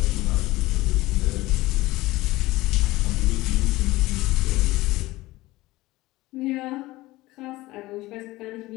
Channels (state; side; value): quieter; right; 18.9 dB